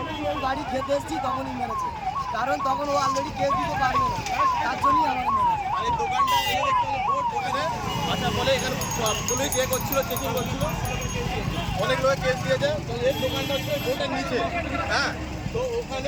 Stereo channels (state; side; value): identical; both; correlation 1.00